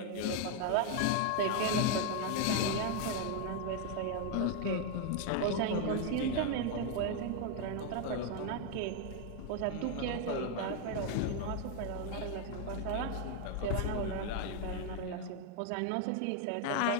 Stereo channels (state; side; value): different; both; correlation 0.01